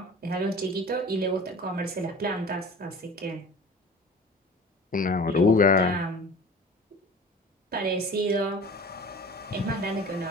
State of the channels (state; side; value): normal; both; correlation 0.41